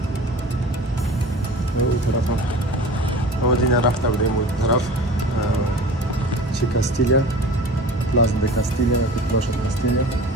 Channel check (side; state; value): both; normal; correlation 0.39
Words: اون طرف هم آمدین رفته بودیم اون طرف چی کاستیلیا، پلاز د کاستیلیا یا پلاش کاستیلیا